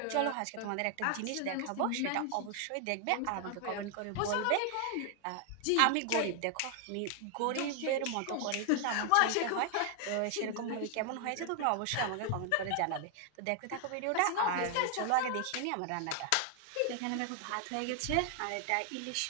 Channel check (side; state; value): both; different; correlation 0.00